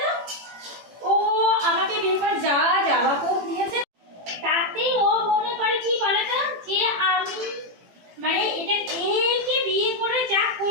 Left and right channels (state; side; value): late; left; 18 ms